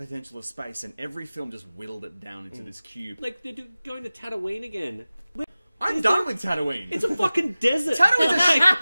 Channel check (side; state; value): both; inverted; correlation -0.97